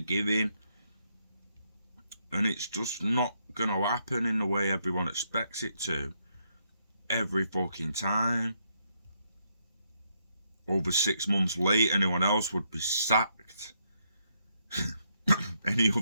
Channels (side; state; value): both; inverted; correlation -0.76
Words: And it's just not going to happen in the way everyone expects it to. Every fucking time. Over 6 months late, anyone else would be sacked. Any